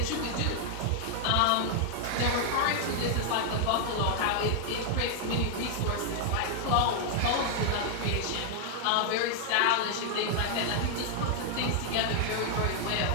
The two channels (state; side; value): different; both; correlation 0.00